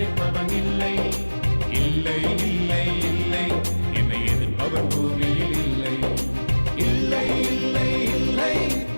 இல்லை, இல்லை இல்லை இல்லை என்னை எதிர்ப்பவன் பூமியில் இல்லை. இல்லை இல்லை இல்லை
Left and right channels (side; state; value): both; inverted; correlation -1.00